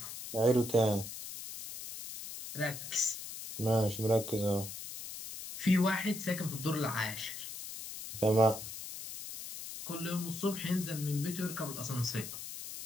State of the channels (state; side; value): noise; left; hiss, 9 dB below the sound